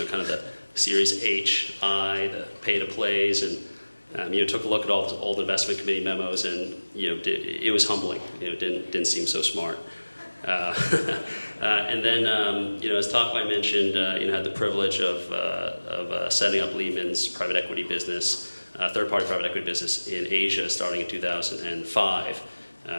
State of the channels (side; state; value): both; inverted; correlation -1.00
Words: of the Series H, I, the pay-to-plays, and took a look at all the old investment committee memos, and it was humbling. Didn't seem so smart. And then, as Takwai mentioned, had the privilege of setting up Lehman's private equity business, third-party private equity business in Asia, starting in 2005.